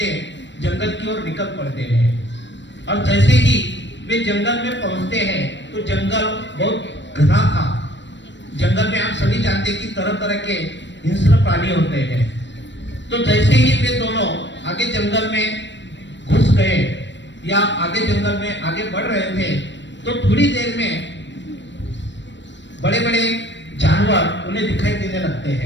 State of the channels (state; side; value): late; right; 0.53 ms